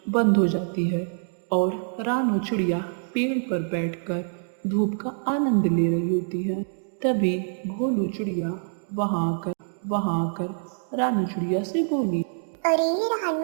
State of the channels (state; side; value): silent; left; digital silence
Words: बंद हो जाती है और रानू चिड़िया पेड़ पर बैठकर धूप का आनंद ले रही होती है। तभी भोलू चिड़िया वहां आकर रानू चिड़िया से बोली। अरे